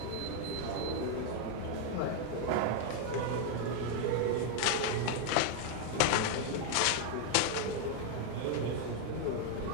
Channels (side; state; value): both; different; correlation 0.01